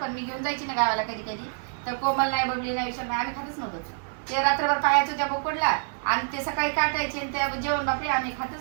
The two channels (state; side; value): silent; left; 60 dB below the other